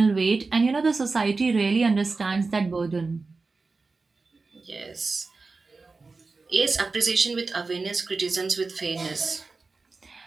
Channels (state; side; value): quieter; left; 4.0 dB